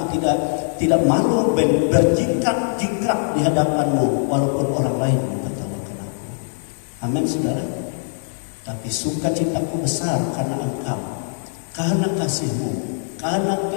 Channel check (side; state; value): right; silent; digital silence